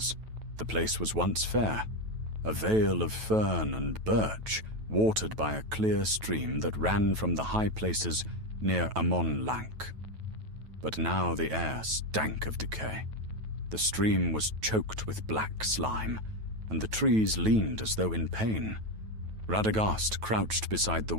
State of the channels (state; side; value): late; left; 9.2 ms